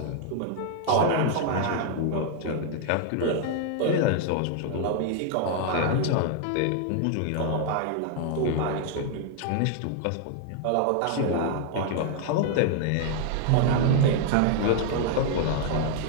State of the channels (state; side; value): different; both; correlation 0.00